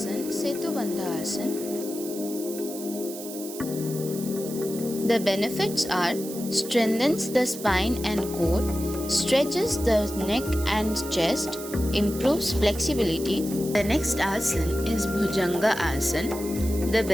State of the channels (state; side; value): noise; right; hiss, 12 dB below the sound